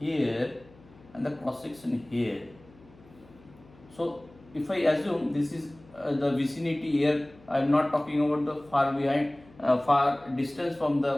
and the cross section here, so if I assume this is the vicinity here, I am not talking about the far distance from the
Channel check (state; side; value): noise; left; hum, 25 dB below the sound